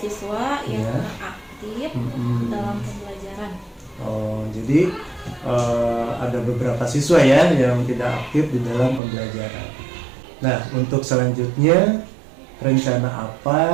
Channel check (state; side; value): drops out; left; at 9.0 s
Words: yang kurang aktif dalam pembelajaran. Oh, jadi ada beberapa siswa ya yang tidak aktif di dalam pembelajaran. Nah, untuk selanjutnya rencana